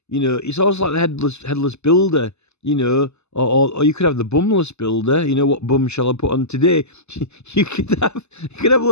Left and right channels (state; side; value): late; right; 0.81 ms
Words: It's almost like the headless builder, or you could have the bumless builder. What bum shall I put on today? You could have